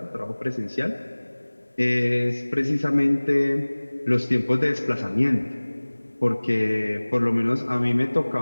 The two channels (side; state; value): both; inverted; correlation -1.00